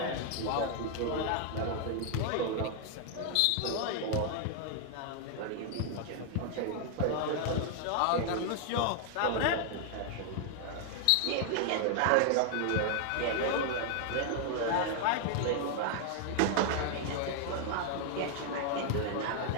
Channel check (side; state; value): both; different; correlation 0.00